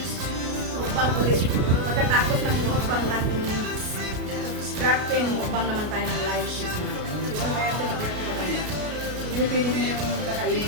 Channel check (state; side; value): late; left; 33 ms